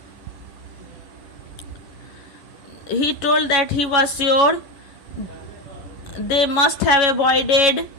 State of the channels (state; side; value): late; right; 11 ms